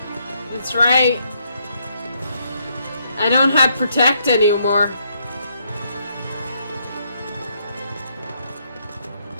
That's right. I don't have Protect anymore.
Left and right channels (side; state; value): both; inverted; correlation -0.74